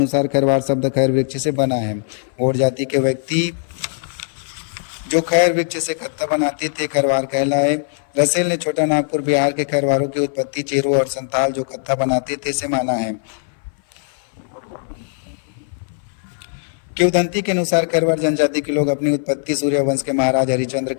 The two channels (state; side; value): silent; right; 58 dB below the other